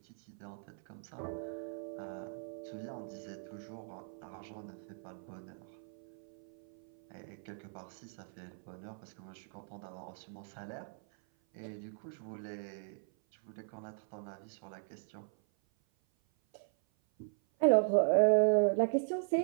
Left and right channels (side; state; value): left; silent; 52 dB below the other